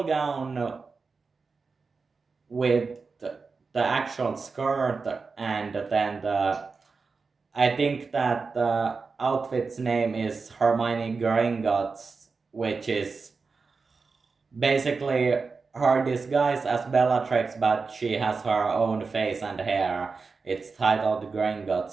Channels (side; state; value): left; quieter; 4.6 dB